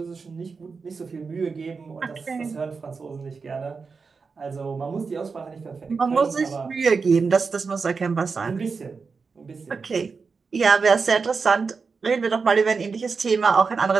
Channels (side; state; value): left; quieter; 4.9 dB